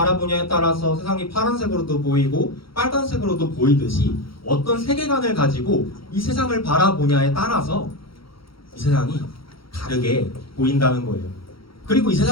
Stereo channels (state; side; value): late; right; 0.75 ms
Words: 따라서 세상이 파란색으로도 보이고 빨간색으로도 보이듯이 어떤 세계관을 가지고 이 세상을 바라보냐에 따라서 이 세상이 다르게 보인다는 거예요. 그리고 이